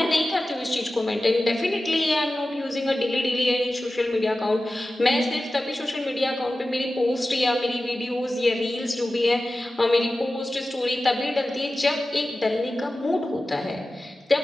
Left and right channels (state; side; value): normal; both; correlation 0.95